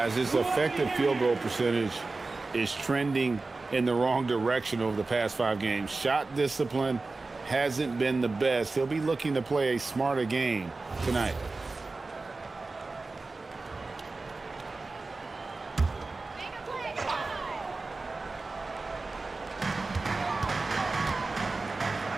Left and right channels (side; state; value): left; quieter; 3.6 dB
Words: his effective field goal percentage is trending in the wrong direction over the past 5 games. Shot discipline hasn't been the best. He'll be looking to play a smarter game tonight.